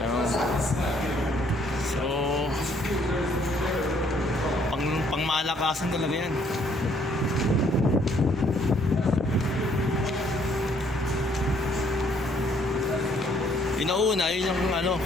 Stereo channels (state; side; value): normal; both; correlation 0.65